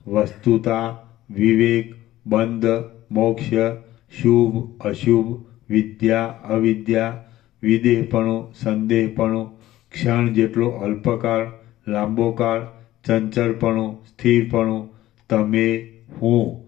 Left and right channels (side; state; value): right; quieter; 15.0 dB